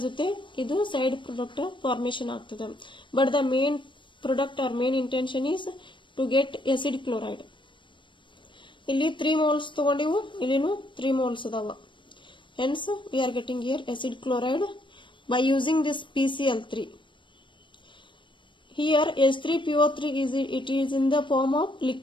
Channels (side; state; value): right; late; 0.24 ms